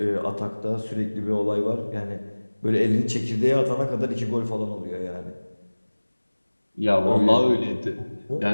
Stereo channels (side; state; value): both; inverted; correlation -1.00